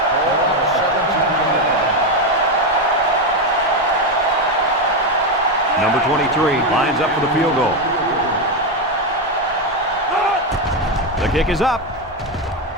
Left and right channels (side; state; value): both; normal; correlation 0.09